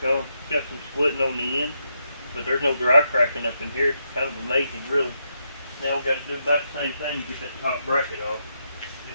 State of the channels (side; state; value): both; inverted; correlation -0.81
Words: on. It's got some splitting on the end, but there's no dry cracking up in here. It's kind of amazing, really. Now we've got to do about the same thing to get that top bracket off.